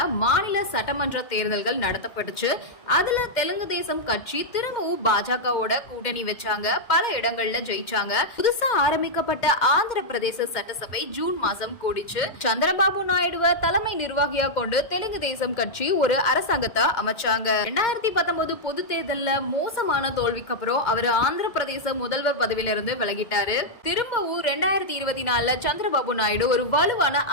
மாநில சட்டமன்ற தேர்தல்கள் நடத்தப்பட்டுச்சு. அதுல தெலுங்கு தேசம் கட்சி திரும்பவும் பாஜகவோட கூட்டணி வச்சாங்க. பல இடங்கள்ல ஜெயிச்சாங்க. புதுசா ஆரம்பிக்கப்பட்ட ஆந்திர பிரதேச சட்டசபை ஜூன் மாசம் கூடிச்சு. சந்திரபாபு நாயுடுவ தலைமை நிர்வாகியா கொண்டு தெலுங்கு தேசம் கட்சி ஒரு அரசாங்கத்தை அரசாங்கத்தை அமைச்சாங்க. 2019 பொது தேர்தல்ல மோசமான தோல்விக்கு அப்புறம் அவர் ஆந்திர பிரதேச முதல்வர் பதவியிலிருந்து விலகிட்டாரு. திரும்பவும் 2024 சந்திரபாபு நாயுடு ஒரு வலுவான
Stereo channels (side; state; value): right; late; 2.1 ms